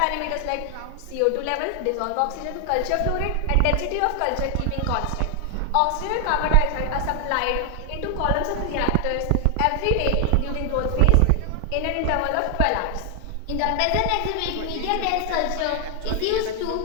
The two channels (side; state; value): both; different; correlation 0.00